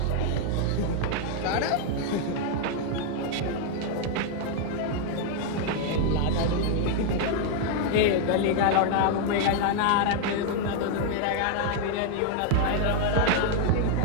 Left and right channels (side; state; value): both; different; correlation 0.00